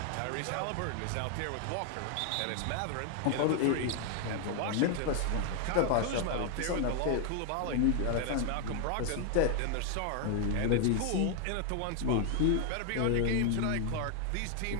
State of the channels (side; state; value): both; different; correlation 0.00